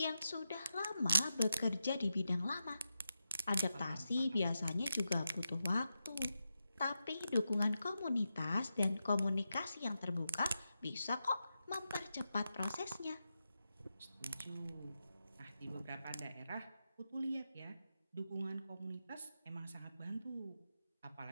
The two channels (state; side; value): inverted; both; correlation -0.88